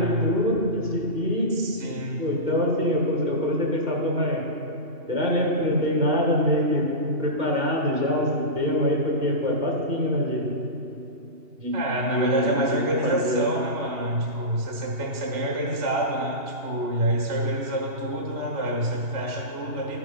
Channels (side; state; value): left; late; 2.8 ms